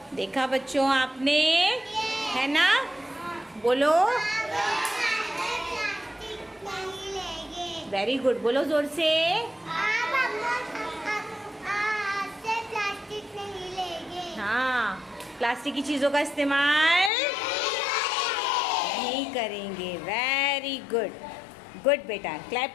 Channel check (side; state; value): right; drops out; at 17.1 s